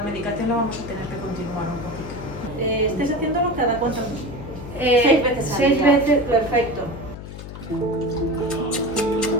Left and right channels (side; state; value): left; noise; hum, 11 dB below the sound